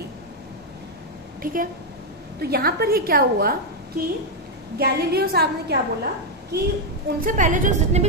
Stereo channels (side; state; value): both; normal; correlation 0.01